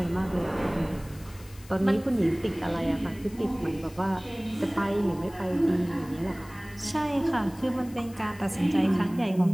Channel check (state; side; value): noise; left; hiss, 22 dB below the sound